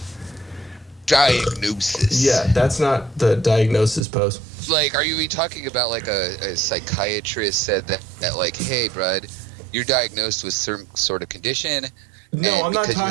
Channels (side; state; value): left; drops out; at 4.0 s